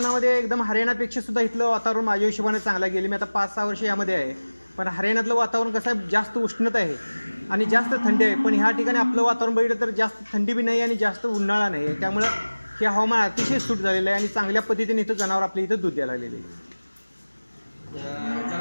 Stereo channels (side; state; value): both; inverted; correlation -1.00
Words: एकदम हरियाणापेक्षा सुद्धा इथलं वातावरण माझ्या हिशोबाने चांगलं गेले. मी आता 5-6 वर्ष यामध्ये आहे. पण हरियाणातलं वातावरण कसं आहे, जास्त उष्णता आहे आणि जास्त थंडी आहे. पण ह्या ठिकाणी आपलं वातावरण बघितलं तर जास्त थंडी बी नाही आणि जास्त उन्हाळा नाही आहे. त्यामुळं हे हवामान अतिशय सूट झालेलं आहे आणि चांगल्या पद्धतीने इथं जनावर आपल्या इथं दूध द्यायला लागलेले आहे.